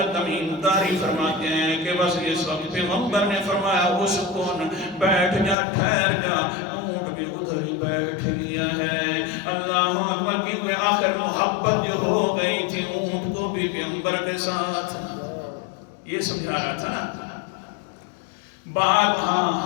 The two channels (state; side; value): drops out; right; at 5.6 s